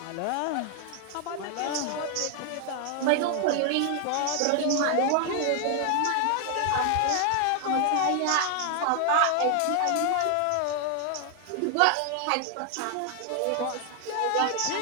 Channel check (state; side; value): different; both; correlation 0.00